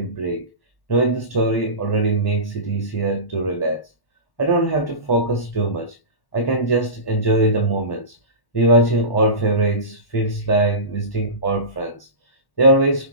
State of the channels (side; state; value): right; late; 1.1 ms